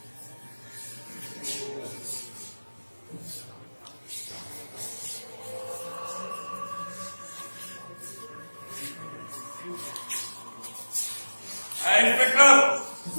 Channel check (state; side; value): inverted; both; correlation -1.00